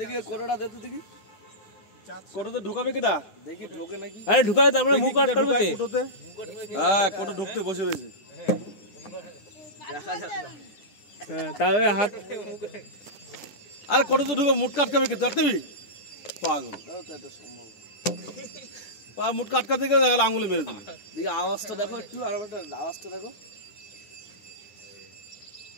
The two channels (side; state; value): right; late; 10 ms